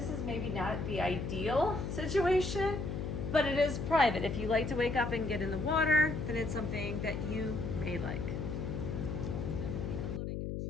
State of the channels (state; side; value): noise; left; hum, 3 dB below the sound